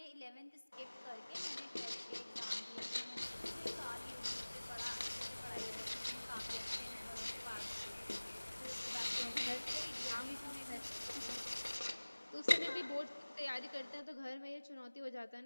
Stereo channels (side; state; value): both; inverted; correlation -1.00